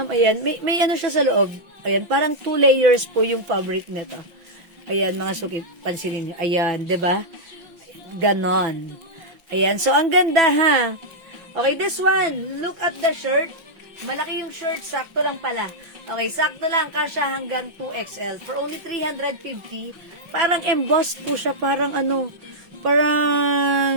ayan, may ano siya sa loob. Ayan, parang 2 layers po yung fabric nito. Ayan, mga suki, pansinin nyo. Ayan, 'di ba? Ganon. Ayan, so ang ganda, ha? Okay, this one, look at the shirt. Malaki yung shirt, sakto lang pala. Okay, sakto lang, kasya hanggang 2XL. For only 350, parang embossed po siya, parang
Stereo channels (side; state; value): left; late; 5.8 ms